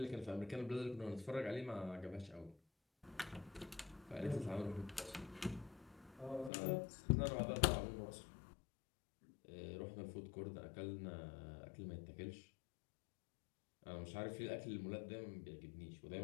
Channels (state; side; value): drops out; right; at 6.5 s